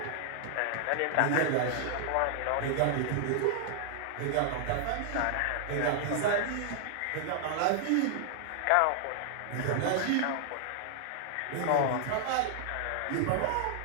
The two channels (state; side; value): different; both; correlation -0.01